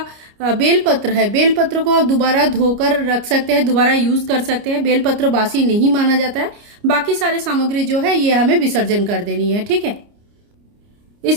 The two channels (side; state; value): left; late; 29 ms